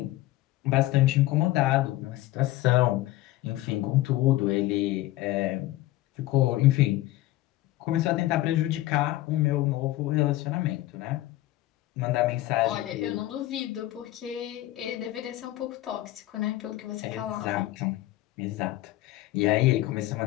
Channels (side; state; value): right; quieter; 16.3 dB